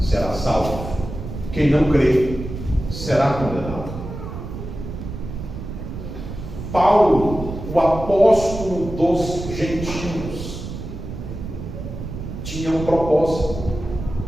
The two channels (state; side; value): noise; right; rumble, 8 dB below the sound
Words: salvo, quem não crer será condenado. Paulo, o apóstolo dos gentios, tinha um propósito: